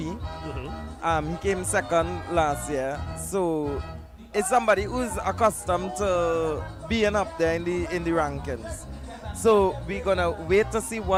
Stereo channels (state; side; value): identical; both; correlation 1.00